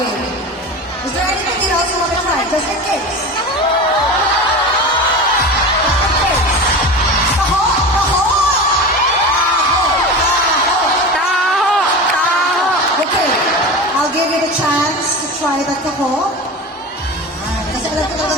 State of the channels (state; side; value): normal; both; correlation 0.28